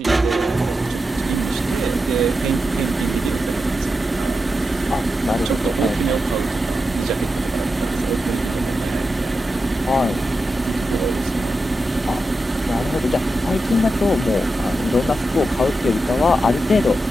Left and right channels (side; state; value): both; normal; correlation 0.89